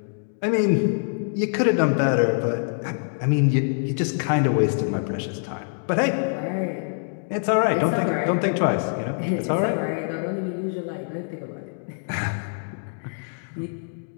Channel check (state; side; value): silent; right; digital silence